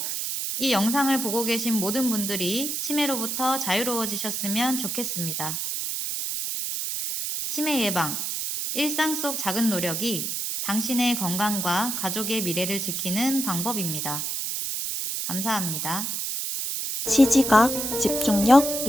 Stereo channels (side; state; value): right; noise; hiss, 2 dB below the sound